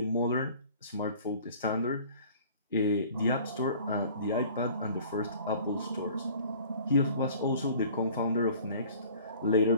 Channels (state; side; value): inverted; both; correlation -0.48